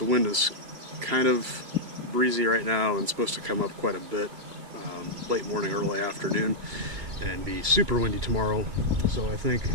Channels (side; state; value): left; late; 2.8 ms